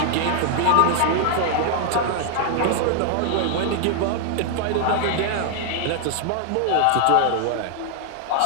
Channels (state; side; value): different; both; correlation 0.00